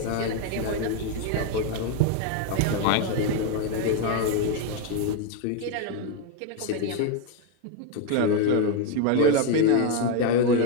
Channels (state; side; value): different; both; correlation 0.02